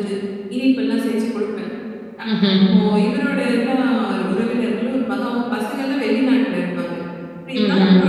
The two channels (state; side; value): identical; both; correlation 1.00